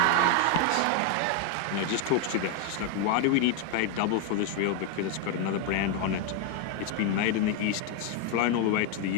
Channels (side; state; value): both; different; correlation 0.01